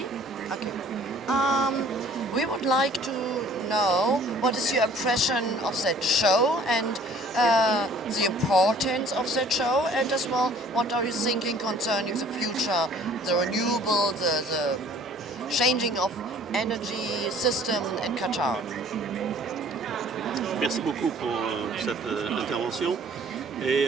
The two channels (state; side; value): normal; both; correlation 0.53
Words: Okay. We would like to know what is your impression of that show and the importance of that show, and as well, what are you thinking concerning the future, the renewable, the changing of energy system in Qatar? Merci beaucoup pour cette intervention.